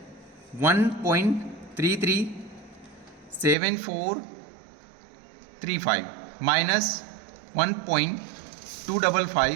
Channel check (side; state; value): left; drops out; at 3.6 s